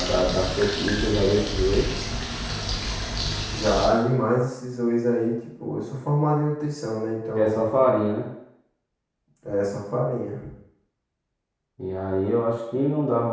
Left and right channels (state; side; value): identical; both; correlation 1.00